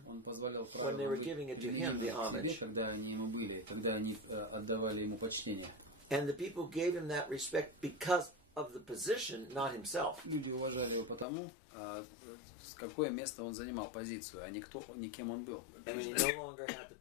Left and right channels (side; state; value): right; drops out; at 11.2 s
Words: Он позволял when they were giving it to him, the себе, homage. когда они ему были, когда они отдавали ему почтение. And the people gave him that respect because of the position, not himself. Люди уважали его потому, какое место он занимал, позицию, а не кем он был. And when he no longer had the